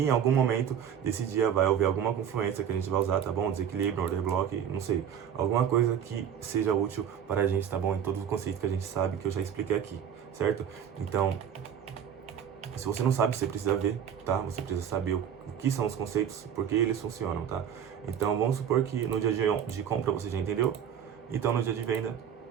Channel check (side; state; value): left; quieter; 8.7 dB